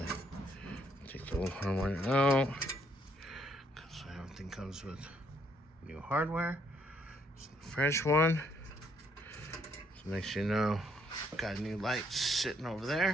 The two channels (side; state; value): both; normal; correlation 0.70